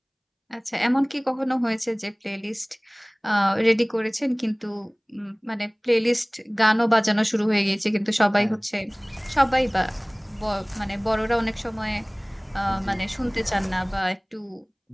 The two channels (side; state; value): both; identical; correlation 1.00